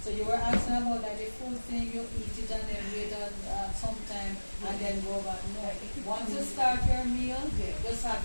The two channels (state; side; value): inverted; both; correlation -1.00